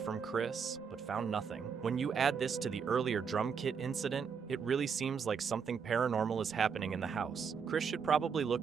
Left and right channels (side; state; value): left; quieter; 6.3 dB